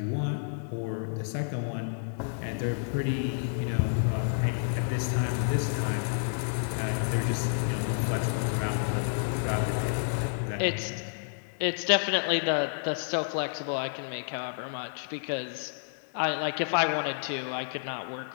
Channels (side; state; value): right; silent; digital silence